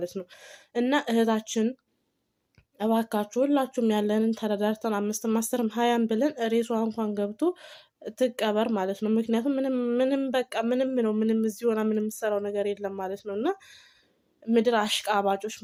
ነው። እና እህታችን እባካችሁ ሁላችሁም ያለንን ተረዳርተን 5ም 10ም 20ም ብለን ሬሷ እንኳን ገብቶ ትቀበር ማለት ነው። ምክንያቱም ምንም በቃ ምንም ነው ምንም እዚህ ሆና ምንም የምትሰራው ነገር የለም ማለት ነው። እና ምድር አሽቃባጮች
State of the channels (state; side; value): identical; both; correlation 1.00